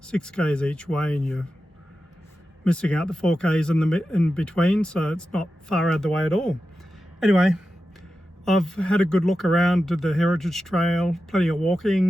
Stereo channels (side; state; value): both; normal; correlation 0.92